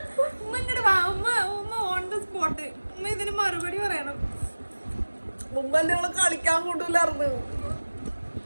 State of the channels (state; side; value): inverted; both; correlation -1.00